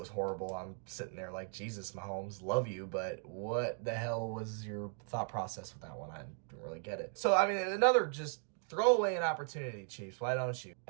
horrible. I'm sitting there like, Jesus, Mahomes, love you, but what the hell was your thought process with that one? I didn't really get it. So, another just throw away an opportunity, Chiefs. Why don't you?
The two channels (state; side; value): silent; left; 53 dB below the other